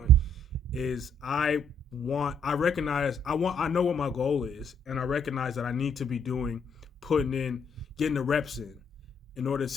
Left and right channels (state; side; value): normal; both; correlation 0.68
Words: is I know what my goal is, and I recognize that I need to be getting the reps in order